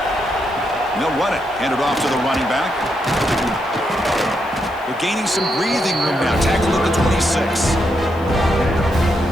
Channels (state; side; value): noise; left; hiss, 28 dB below the sound